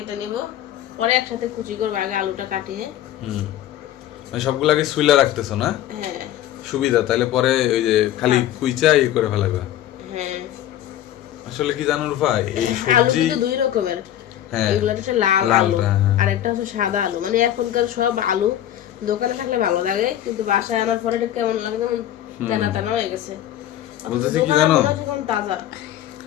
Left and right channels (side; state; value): right; quieter; 12.1 dB